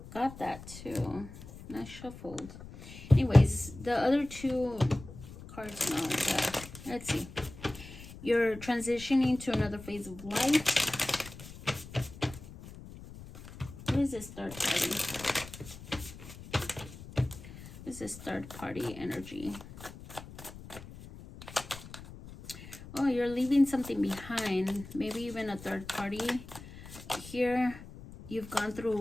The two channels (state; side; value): noise; left; rumble, 15 dB below the sound